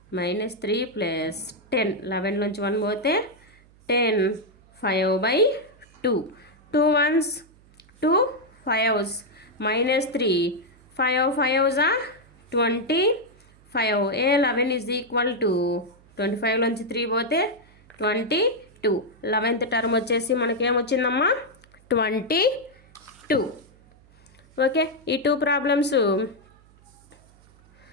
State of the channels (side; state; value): right; noise; hum, 28 dB below the sound